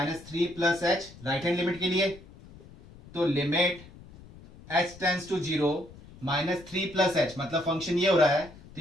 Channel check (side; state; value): left; noise; rumble, 20 dB below the sound